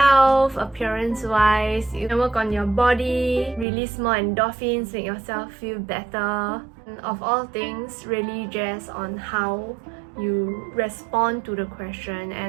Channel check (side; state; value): left; drops out; at 3.7 s